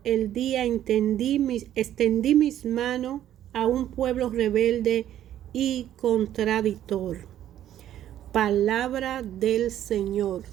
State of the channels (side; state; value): left; quieter; 11.6 dB